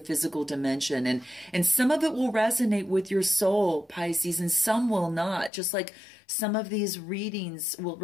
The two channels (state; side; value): drops out; right; at 5.5 s